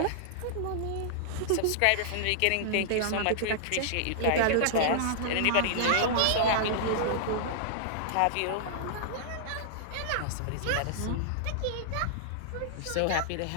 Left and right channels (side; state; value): both; different; correlation -0.01